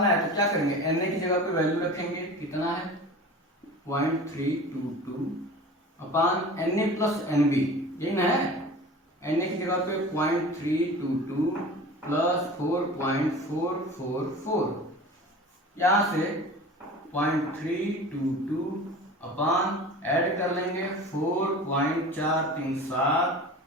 है तो क्या करेंगे, Na की जगह पे वैल्यू रखेंगे, कितना है 0.322 अपान Na प्लस Nb, यही ना है, Na की जगह पे 0.322 प्लस 4.444, यहाँ से 0.322 अपॉन ऐड कर लेंगे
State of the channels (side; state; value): both; normal; correlation 0.38